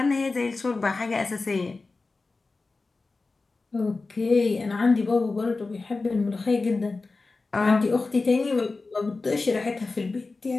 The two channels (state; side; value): quieter; right; 3.7 dB